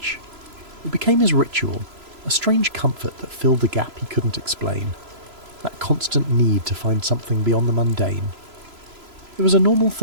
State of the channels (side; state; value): left; late; 3.0 ms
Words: It became his ritual, a strange comfort that filled the gap he couldn't explain, that constant need to find something beyond the mundane. It was a normal